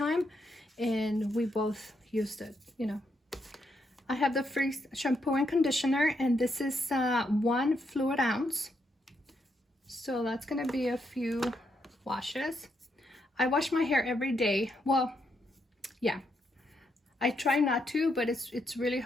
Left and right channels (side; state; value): both; normal; correlation 0.79